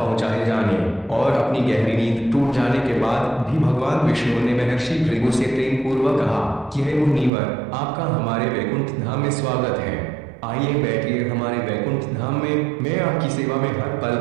जाने और अपनी गहरी नींद टूट जाने के बाद भी भगवान विष्णु ने महर्षि भृगु से प्रेम पूर्वक कहा कि हे मुनिवर, आपका हमारे वैकुंठ धाम में स्वागत है। आइए बैठिए हमारे वैकुंठ धाम में, मैं आपकी सेवा में हर पल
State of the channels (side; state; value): left; drops out; at 7.3 s